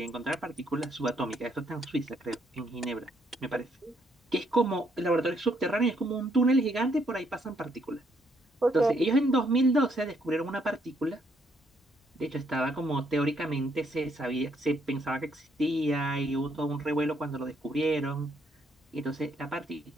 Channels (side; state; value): both; normal; correlation 0.72